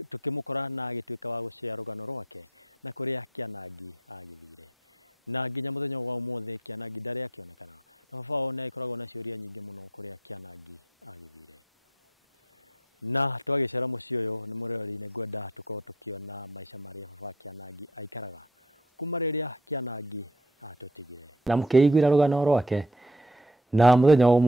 na agĩtuĩka wa gũcea rũgano rwake na kũrĩa Kĩanangi agĩthire. Na nginya mũthenya wa ũmũthĩ Kĩanangi ndarĩ akĩonekana, na baba wao nĩ agĩkoragwo na ciũria nyingĩ mũno kũrĩa Kĩanangi agĩthire. Na twagĩcera mũciĩ ũyũ nĩ mũrori nĩ ngwenda tũkorwo tũkĩona maica marĩa baba wa Kĩanangi aikaraga kuma rĩrĩa Kĩanangi atũtigire. Na mũkĩiguĩra rũgano rwake, na mũthenya wa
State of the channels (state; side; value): normal; both; correlation 0.54